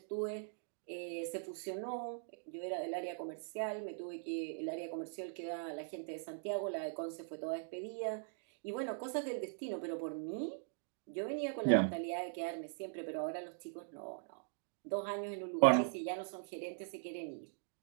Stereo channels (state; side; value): silent; left; digital silence